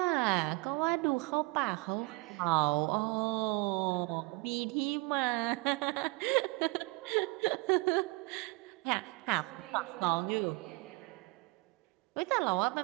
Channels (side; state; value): left; quieter; 26.7 dB